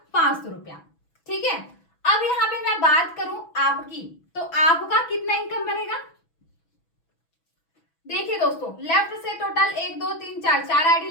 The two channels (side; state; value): right; late; 6.1 ms